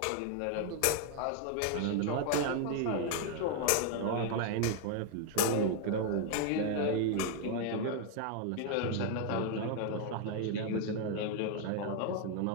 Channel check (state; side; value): different; both; correlation 0.00